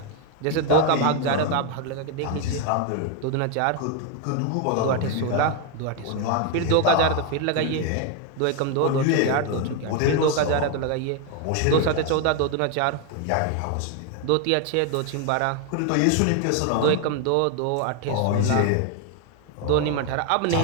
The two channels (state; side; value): different; both; correlation 0.01